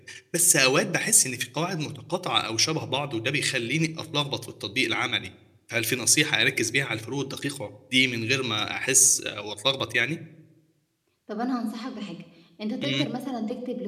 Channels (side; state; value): both; identical; correlation 1.00